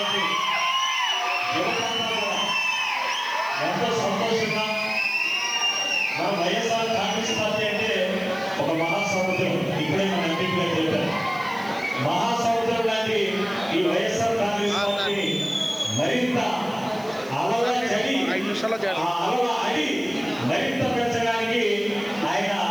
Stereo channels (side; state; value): right; noise; hiss, 24 dB below the sound